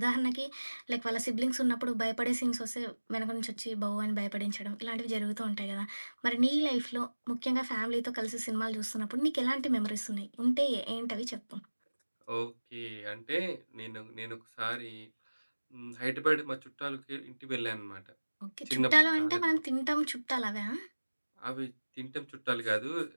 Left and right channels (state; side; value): inverted; both; correlation -1.00